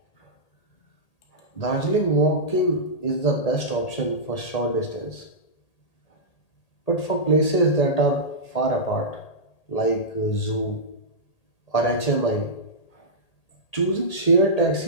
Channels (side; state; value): right; late; 1.8 ms